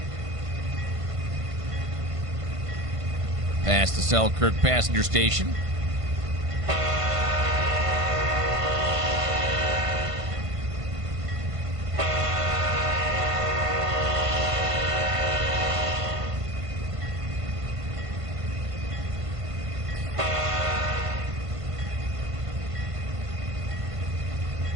Past the Selkirk passenger station.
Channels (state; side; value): late; left; 1.5 ms